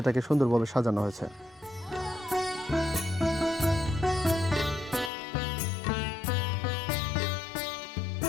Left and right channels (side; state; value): right; drops out; at 5.1 s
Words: সুন্দরভাবে সাজানো হয়েছে।